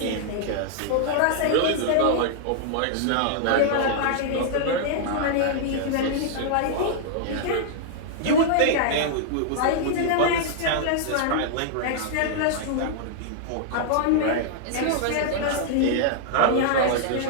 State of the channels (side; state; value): both; different; correlation -0.01